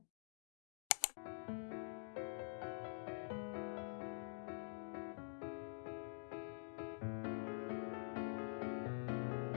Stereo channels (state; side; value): silent; right; digital silence